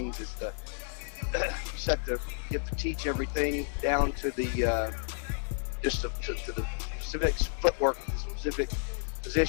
is to get to teach everything down to the to the specific footwork, specific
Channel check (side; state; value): right; silent; digital silence